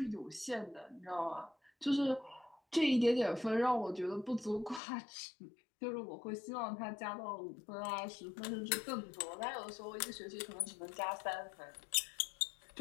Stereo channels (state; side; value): drops out; right; at 4.8 s